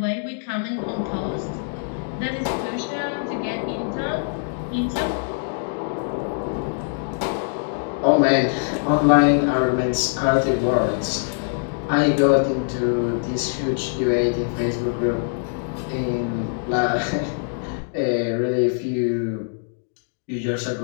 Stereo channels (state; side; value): silent; right; digital silence